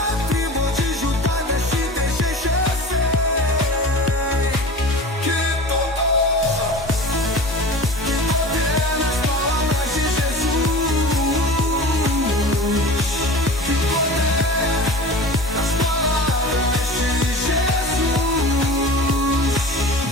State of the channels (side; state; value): both; normal; correlation 0.36